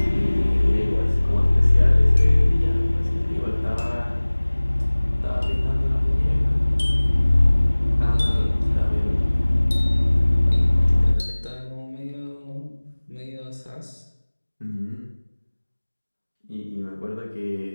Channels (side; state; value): both; inverted; correlation -1.00